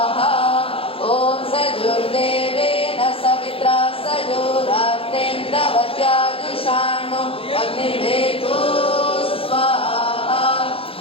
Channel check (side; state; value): right; late; 0.27 ms